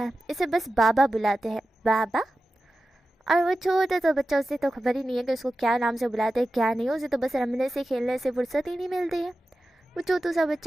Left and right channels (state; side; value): normal; both; correlation 0.93